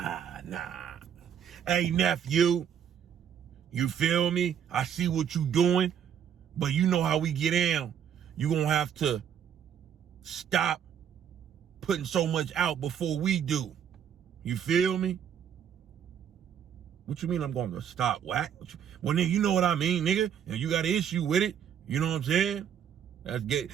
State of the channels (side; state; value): left; quieter; 8.7 dB